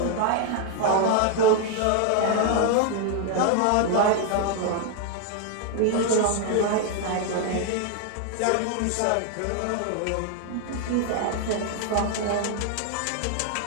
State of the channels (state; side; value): different; both; correlation 0.01